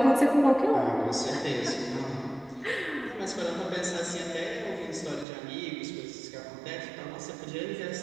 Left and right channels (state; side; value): drops out; left; at 5.2 s